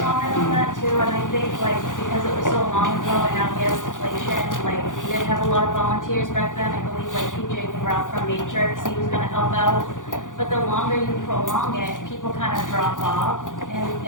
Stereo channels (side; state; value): right; late; 0.88 ms